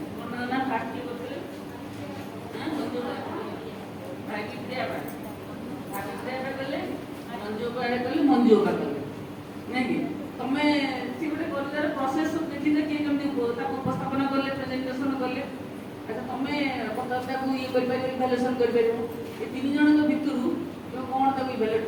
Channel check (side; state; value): both; identical; correlation 1.00